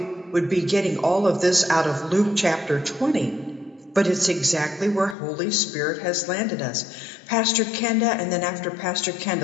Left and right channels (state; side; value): drops out; right; at 5.2 s